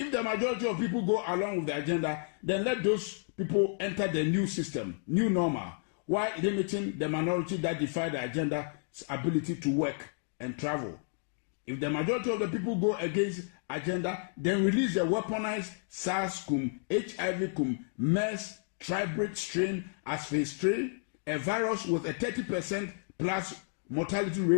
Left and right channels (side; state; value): right; silent; 57 dB below the other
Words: the majority of people go along with the agenda, then let those people enter the new system, new normal, while limiting the minority that defy the agenda's ability to work and travel. If the majority of the people go against agenda, then release the weaponized SARS-CoV, HIV-CoV, MERS, tribrid strain as phase 3, a virus with a 30% plus mortality